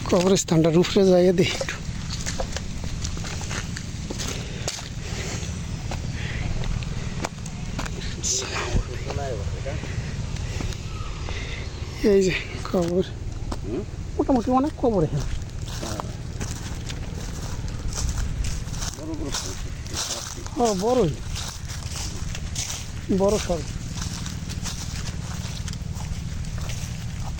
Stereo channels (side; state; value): both; identical; correlation 1.00